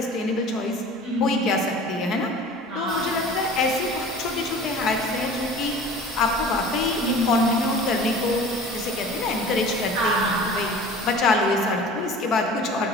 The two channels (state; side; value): normal; both; correlation 0.42